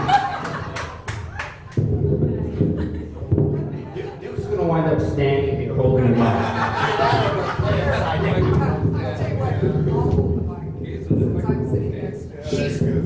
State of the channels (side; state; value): both; identical; correlation 1.00